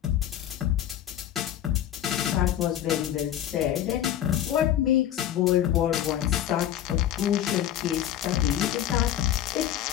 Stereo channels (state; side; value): quieter; right; 11.5 dB